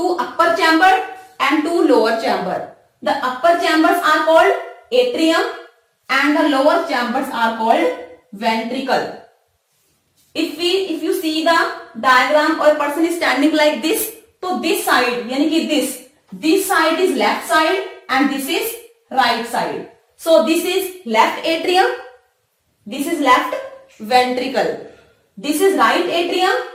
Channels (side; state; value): both; identical; correlation 1.00